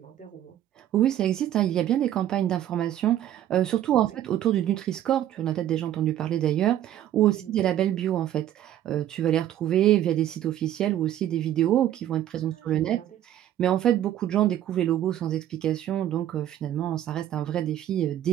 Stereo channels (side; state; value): left; quieter; 11.8 dB